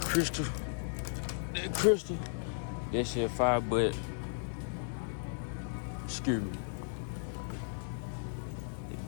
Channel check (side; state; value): right; silent; digital silence